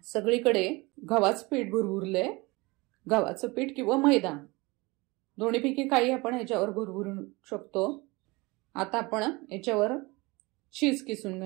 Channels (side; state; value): left; quieter; 24.2 dB